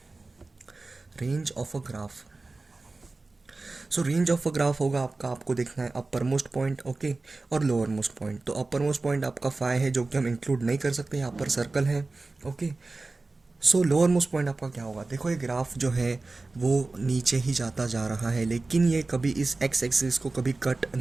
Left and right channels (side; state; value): left; quieter; 3.4 dB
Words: Range of a graph. So range of a graph होगा आपका, आपको देखना है अपर मोस्ट पॉइंट, ओके, और लोअर मोस्ट पॉइंट। तो अपर मोस्ट पॉइंट आपका 5 है जो कि हम इंक्लूड नहीं कर सकते, यहाँ पर सर्कल है। ओके, सो लोअर मोस्ट पॉइंट आपका क्या होगा? देखो ये ग्राफ जो है वो नीचे ही जाता जा रहा है, लेकिन ये कभी इस एक्स एक्सिस को कभी कट